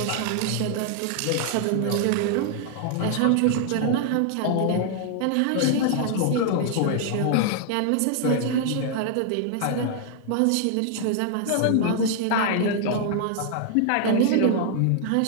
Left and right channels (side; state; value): both; different; correlation 0.00